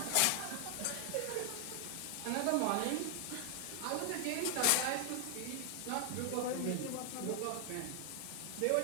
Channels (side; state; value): both; different; correlation 0.00